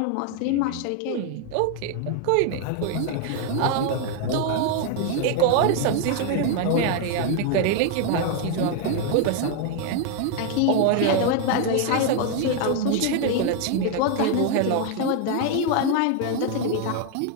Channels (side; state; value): both; different; correlation 0.00